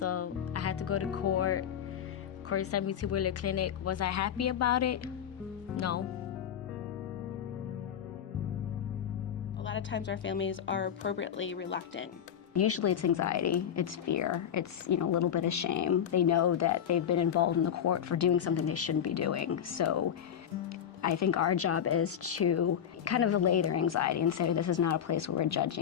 I had to go to court. Court sent me to Wheeler Clinic. Was I happy about it? No. A lot of times our families are appropriately reluctant. Usually it's anxiety, it's fear, it's a little bit of shame. They know that they've been involved in the court for doing something they shouldn't be doing. So I think our job is to kind of allay their anxiety and say this is not a place where we're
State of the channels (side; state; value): right; quieter; 9.0 dB